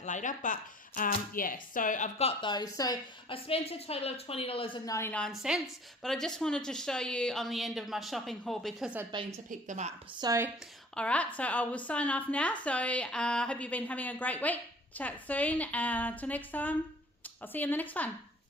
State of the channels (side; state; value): both; normal; correlation 0.51